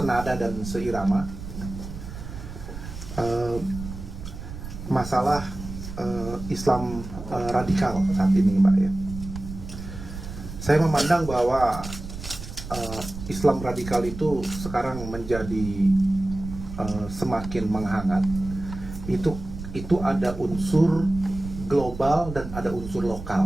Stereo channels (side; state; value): right; noise; rumble, 10 dB below the sound